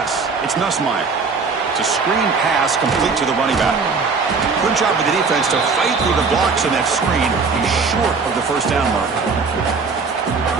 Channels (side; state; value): left; quieter; 4.8 dB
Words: It's Nussmeier. It's a screen pass complete to the running back. Good job with the defense to fight through the blocks in that screen. He's short of the first down mark.